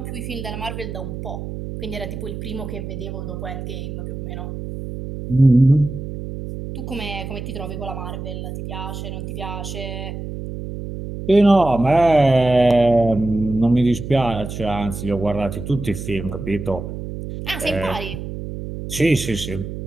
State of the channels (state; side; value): noise; right; hum, 8 dB below the sound